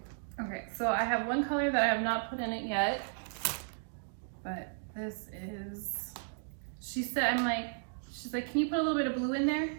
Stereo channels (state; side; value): silent; left; digital silence